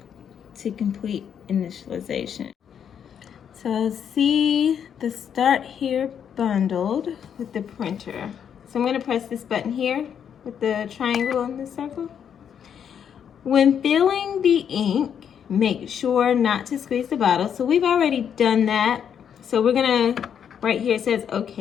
to complete initialization. So see the start here bundled with the printer. So I'm gonna press this button here with the triangle and the circle. When filling the ink, make sure not to squeeze the bottle. So we've already done that. So we're gonna, right here it says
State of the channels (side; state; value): right; quieter; 8.2 dB